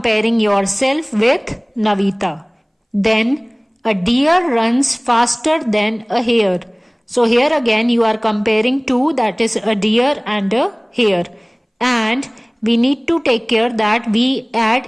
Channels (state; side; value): identical; both; correlation 1.00